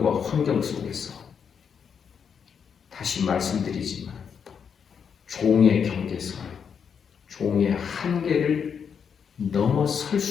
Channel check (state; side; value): quieter; right; 7.0 dB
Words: 환경 속에서 다시 말씀드리지만 종의 경계선, 종의 한계를 넘어설